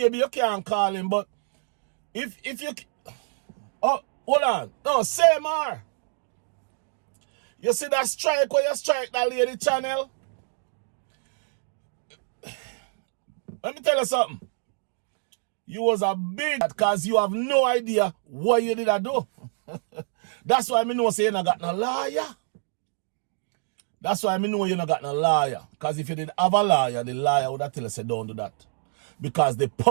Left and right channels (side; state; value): left; silent; digital silence